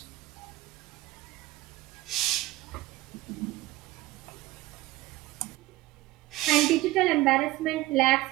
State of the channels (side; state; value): left; quieter; 18.2 dB